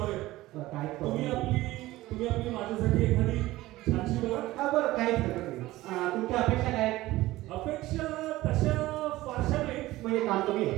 आहे. काय तुम्ही आपली माझ्यासाठी एखादी छानशी बघा. हा बरं काहीच हरकत नाही. तुमच्या अपेक्षा काय आहेत? अपेक्षा तशा फारशा नाही. म्हणजे काम तुम्ही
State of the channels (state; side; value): quieter; left; 17.4 dB